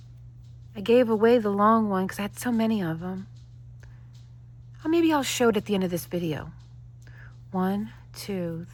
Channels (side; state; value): both; identical; correlation 1.00